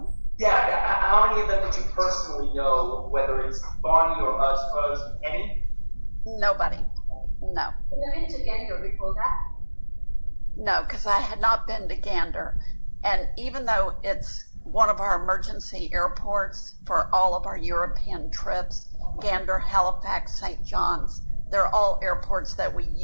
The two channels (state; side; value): inverted; both; correlation -1.00